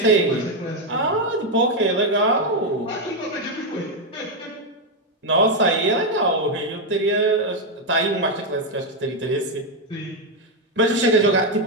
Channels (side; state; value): both; normal; correlation 0.03